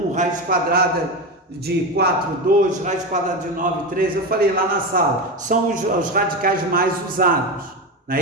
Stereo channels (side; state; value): both; normal; correlation 0.18